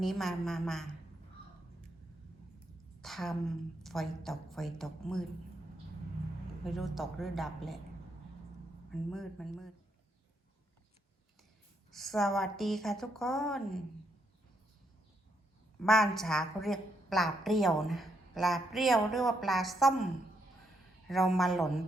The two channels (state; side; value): normal; both; correlation 0.77